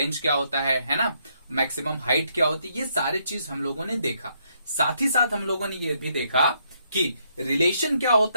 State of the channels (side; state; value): both; inverted; correlation -0.74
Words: क्या होता है ना, मैक्सिमम हाइट क्या होती है, ये सारे चीज हम लोगों ने देखा। साथ ही साथ हम लोगों ने ये भी देखा कि रिलेशन क्या